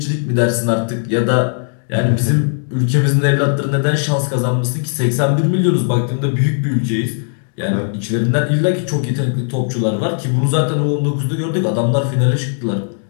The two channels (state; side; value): silent; right; digital silence